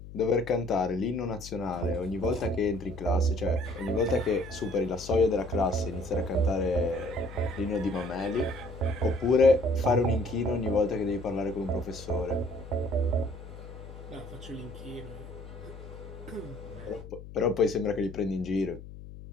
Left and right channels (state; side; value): noise; left; hum, 14 dB below the sound